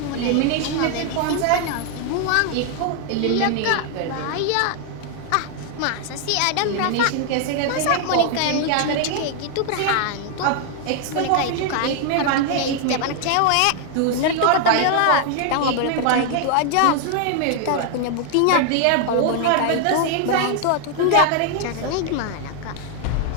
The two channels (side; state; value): both; different; correlation 0.00